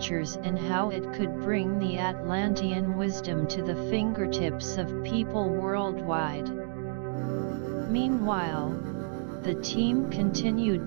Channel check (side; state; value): left; silent; digital silence